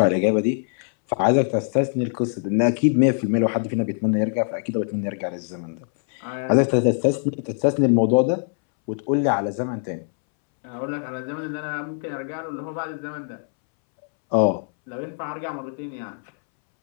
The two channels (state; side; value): silent; right; 63 dB below the other